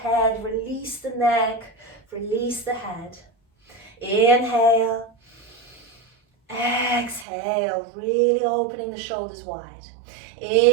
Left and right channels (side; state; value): left; drops out; at 7.2 s